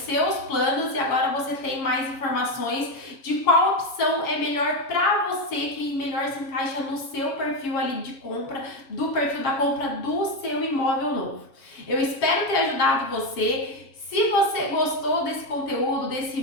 planos, e agora você tem mais informações de qual opção é melhor para você, que melhor se encaixa no seu perfil ali de compra, do perfil da compra do seu imóvel novo. Eu espero ter ajudado você. Se você gostou desse conteúdo, desse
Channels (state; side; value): late; right; 7.4 ms